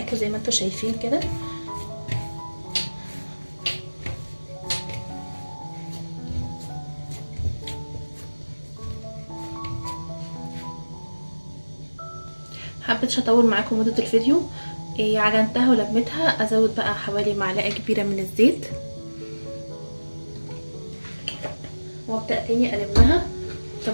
زي ما انتوا شايفين كده. حبيتش اطول معاكم مده الفيديو. عجنتها ولمتها، ازود بقى حوالي معلقه كبيره من الزيت وابدا تاني اقلبها.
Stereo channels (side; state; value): both; inverted; correlation -1.00